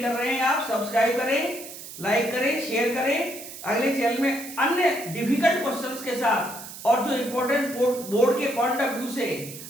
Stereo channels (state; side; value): noise; right; hiss, 13 dB below the sound